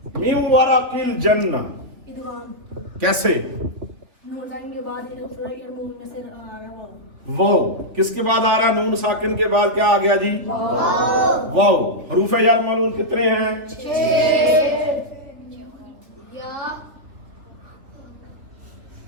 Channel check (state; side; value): late; left; 3.4 ms